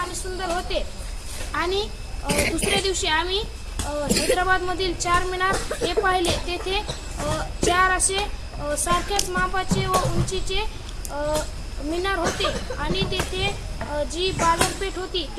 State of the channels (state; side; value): identical; both; correlation 1.00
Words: सुंदर होते. आणि दुसऱ्या दिवशी आम्ही हैदराबादमधील चारमिनार हे पाहिले. तेथे चार असे सारख्याच मापाचे व उंचीचे मिनार होते आणि तेथे जी बाजारपेठ होती